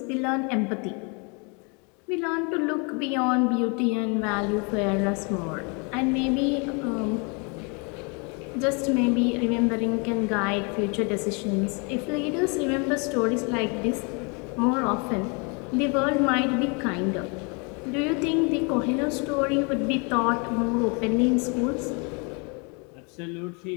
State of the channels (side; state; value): right; quieter; 33.3 dB